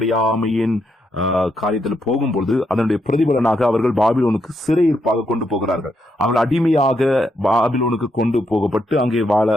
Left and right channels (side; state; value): both; normal; correlation 0.79